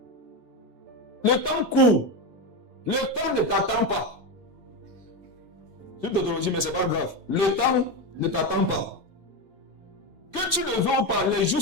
Le temps court. Le temps ne t'attend pas. Tu te dis, mais c'est pas grave. Le temps ne t'attend pas. Que tu le veux ou pas, les jours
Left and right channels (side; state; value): left; late; 8.1 ms